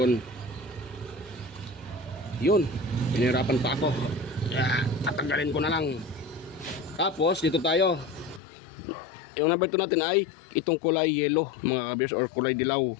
Yun. Pinahirapan pa ako. Tatanggalin ko na lang. Tapos dito tayo. Yung number 2 natin ay itong kulay yellow mga ka-viewers or kulay dilaw.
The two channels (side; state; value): right; drops out; at 8.4 s